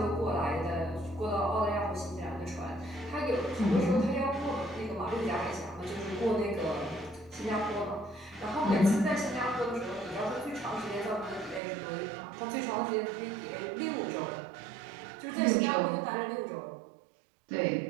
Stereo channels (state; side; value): drops out; left; at 11.6 s